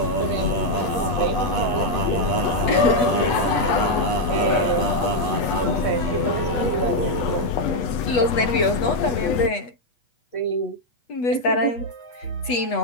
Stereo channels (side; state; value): right; late; 8.2 ms